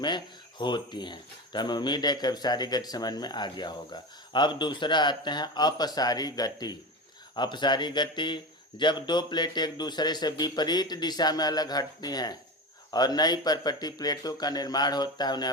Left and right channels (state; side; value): normal; both; correlation 0.24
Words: होती हैं। तो हमें उम्मीद है कि अभिसारी गति समझ में आ गया होगा। अब दूसरा आते हैं अपसारी गति। अपसारी गति, जब दो प्लेट एक दूसरे से विपरीत दिशा में अलग हटती हैं और नई परपटी प्लेटों का निर्माण होता है, उन्हें